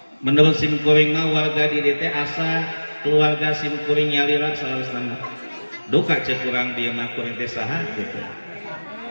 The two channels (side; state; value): both; inverted; correlation -1.00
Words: menurut simkuring mah warga di DT asa keluarga simkuring nyalira salasana duka cek kurang dia mah kuring teh saha gitu